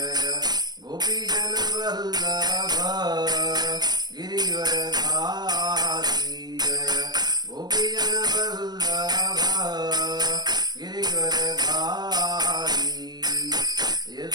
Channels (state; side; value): late; left; 0.20 ms